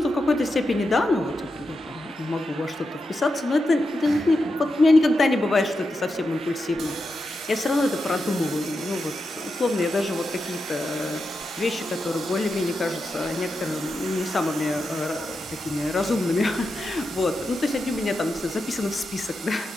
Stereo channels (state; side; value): normal; both; correlation 0.88